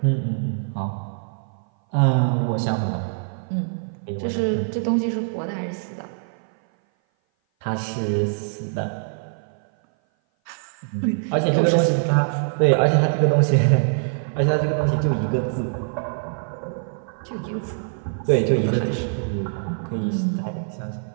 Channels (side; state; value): left; silent; 57 dB below the other